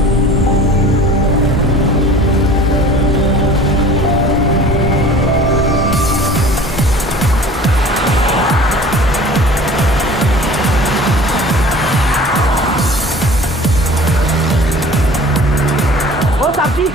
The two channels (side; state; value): both; normal; correlation 0.44